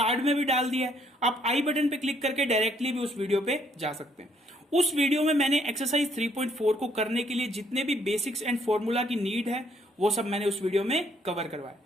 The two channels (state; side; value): normal; both; correlation 0.68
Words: में भी डाल दिया है, आप आई बटन पे क्लिक करके डायरेक्टली भी उस वीडियो पे जा सकते हैं। उस वीडियो में मैंने एक्सरसाइज 3.4 को करने के लिए जितने भी बेसिक्स एंड फॉर्मूला की नीड है वो सब मैंने उस वीडियो में कवर करवाया।